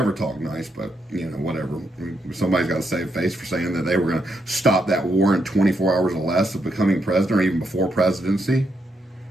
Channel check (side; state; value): both; normal; correlation 0.80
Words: talked nice, but, whatever. Somebody's got to save face for saying that they were going to stop that war in 24 hours or less of becoming president, or even before presidency.